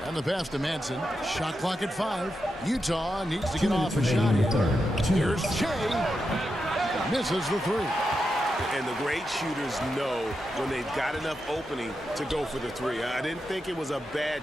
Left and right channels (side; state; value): both; normal; correlation 0.87